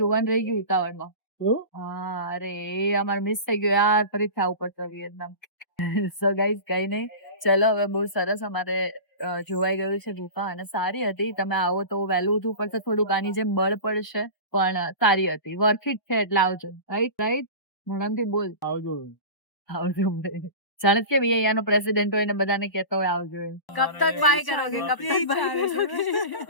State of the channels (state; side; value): late; right; 1.3 ms